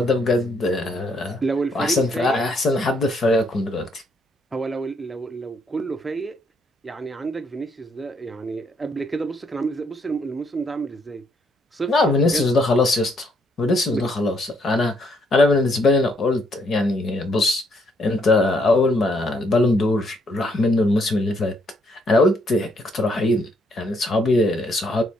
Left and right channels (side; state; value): both; normal; correlation 0.71